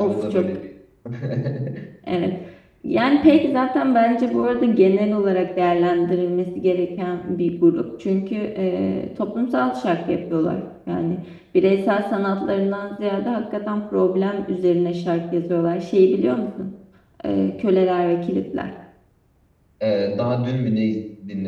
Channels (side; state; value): both; identical; correlation 1.00